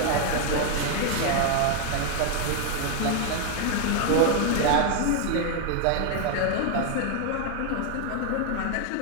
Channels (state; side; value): different; both; correlation 0.00